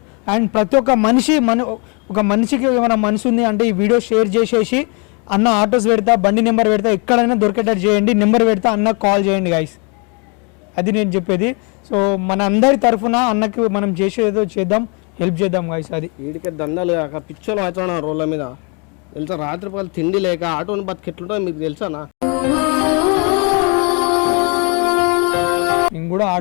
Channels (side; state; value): right; quieter; 33.9 dB